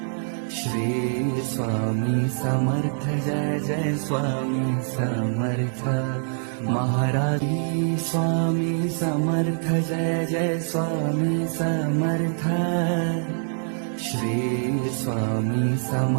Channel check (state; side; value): silent; left; digital silence